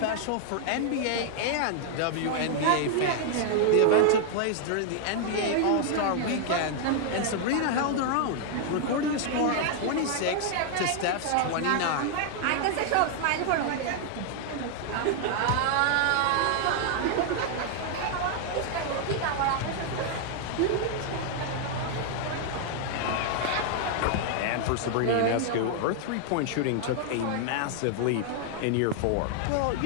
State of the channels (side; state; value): both; different; correlation 0.00